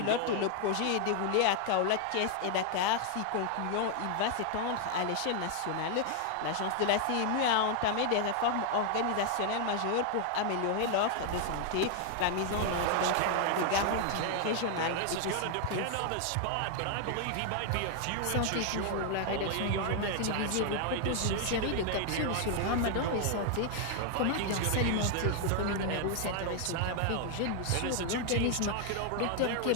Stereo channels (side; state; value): both; different; correlation 0.00